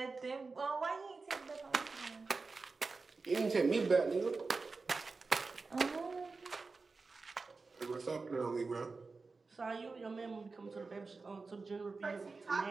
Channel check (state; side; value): quieter; left; 4.1 dB